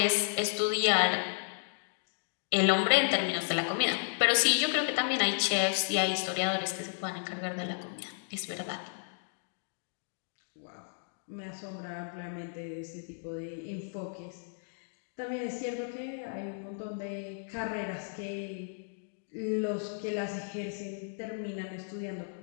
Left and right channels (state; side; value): silent; right; digital silence